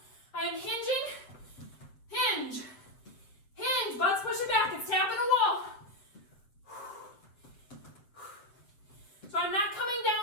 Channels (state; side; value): late; right; 7.8 ms